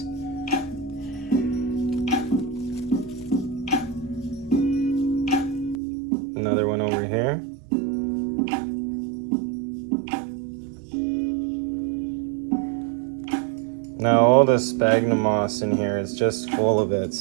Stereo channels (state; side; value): drops out; left; at 5.8 s